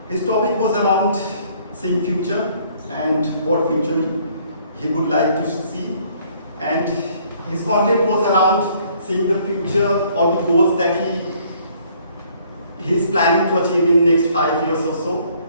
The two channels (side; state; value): both; inverted; correlation -0.62